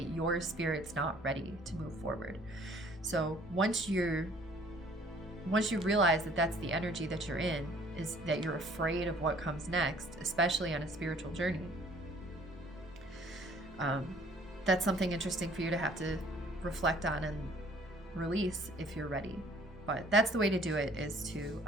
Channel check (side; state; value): both; normal; correlation 0.57